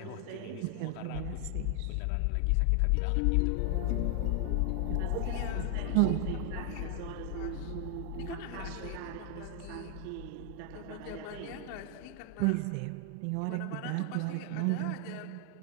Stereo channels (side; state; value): both; different; correlation 0.00